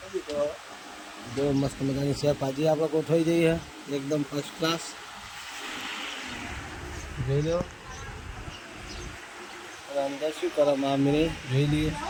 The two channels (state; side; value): identical; both; correlation 1.00